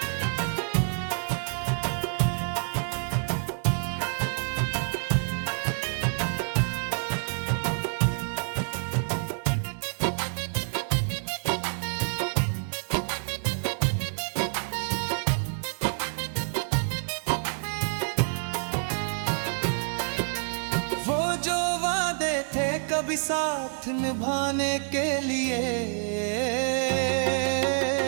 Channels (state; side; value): silent; left; 59 dB below the other